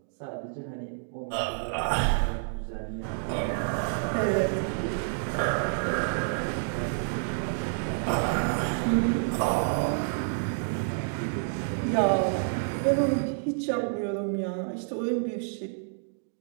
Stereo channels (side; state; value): left; silent; digital silence